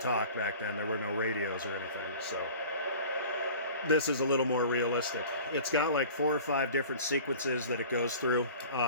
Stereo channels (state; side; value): inverted; both; correlation -0.42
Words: back then. There were no radios or anything. So this is a little more realistic. It's got like 4 or 5 different sequences that it goes through.